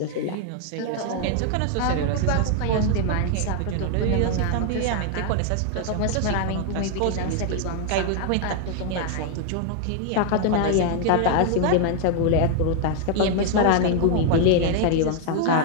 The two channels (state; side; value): different; both; correlation 0.00